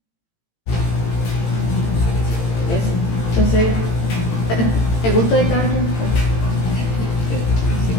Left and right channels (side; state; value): right; late; 18 ms